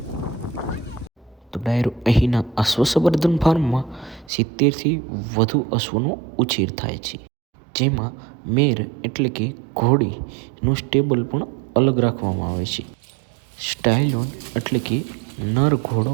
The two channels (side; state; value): left; drops out; at 4.3 s